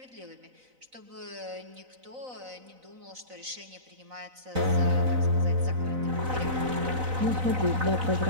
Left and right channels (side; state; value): left; late; 4.0 ms